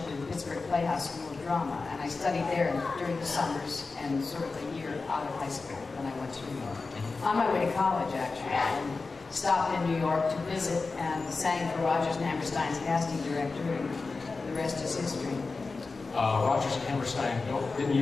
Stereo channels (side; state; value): right; quieter; 4.0 dB